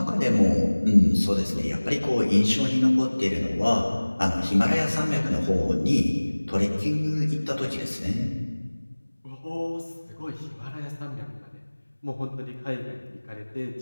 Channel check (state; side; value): inverted; both; correlation -1.00